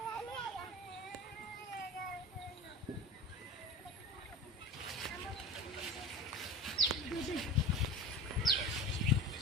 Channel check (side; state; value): both; normal; correlation 0.32